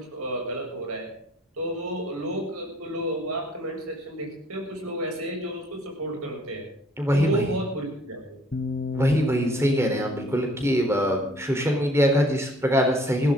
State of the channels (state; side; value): normal; both; correlation 0.58